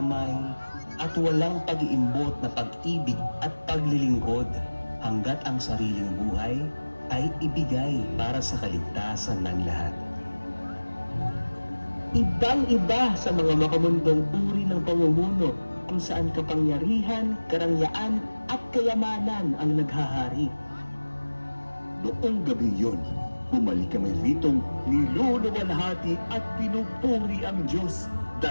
at walang pag-iimbot na pag-ibig at paglilingkod hanggat ang sariling buhay ay ibigay para sa kaligtasan ng lahat. Ibang-iba sa mga makamundong uri ng pamumuno kung saan kapangyarihan, karangyaan at kayamanan ang naghahari. Noong gabi yun, bumalik kami ritong niluluwalhati at pinupuri ang Diyos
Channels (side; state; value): both; inverted; correlation -1.00